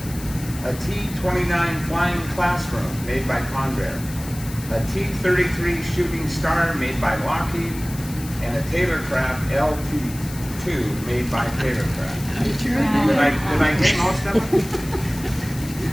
A T-29 Flying Classroom, made by Convair. A T-33 Shooting Star, made by Lockheed. And a Taylorcraft LT-2, made by Taylorcraft. Did I get most of them?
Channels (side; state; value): left; noise; hiss, 15 dB below the sound